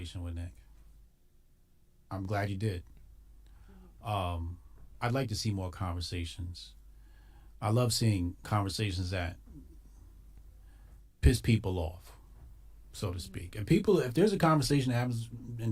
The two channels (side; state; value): both; identical; correlation 1.00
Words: with Nick. I'm glad you did. I'd like to see more conversations. I love seeing conversations that piss people off, so to speak. And if there's a conversation that happens